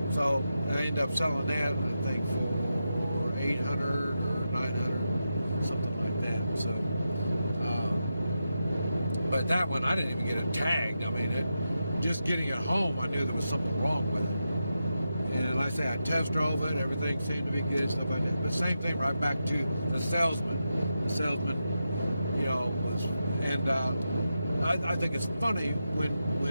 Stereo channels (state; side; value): inverted; both; correlation -0.88